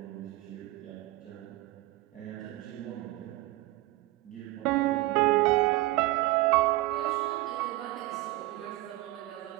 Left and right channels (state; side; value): quieter; left; 18.4 dB